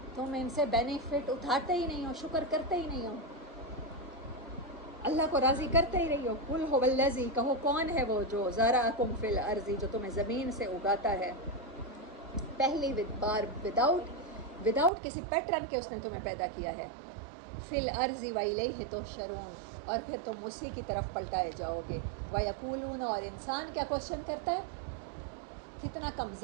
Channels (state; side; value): drops out; left; at 14.9 s